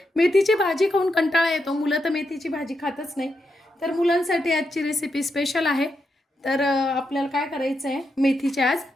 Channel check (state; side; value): normal; both; correlation 0.84